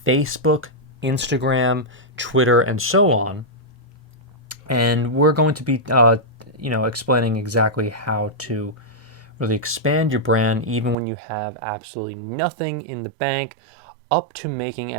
Facebook, Instagram, Twitter, and so on. And we're going to be explaining exactly how to really expand your brand even when you have absolutely nothing in the bank, up to making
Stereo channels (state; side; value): drops out; left; at 11.0 s